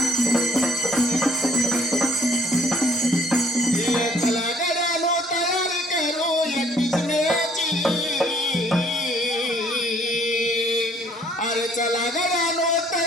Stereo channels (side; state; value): both; normal; correlation 0.61